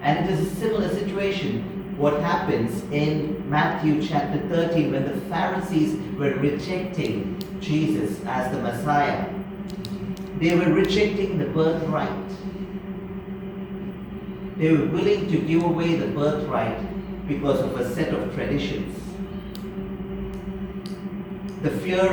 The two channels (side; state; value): both; identical; correlation 1.00